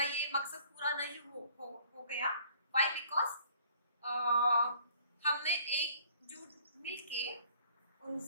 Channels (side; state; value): both; inverted; correlation -0.55